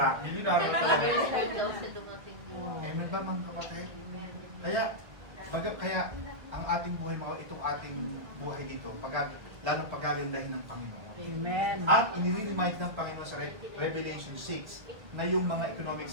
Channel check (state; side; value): late; left; 1.6 ms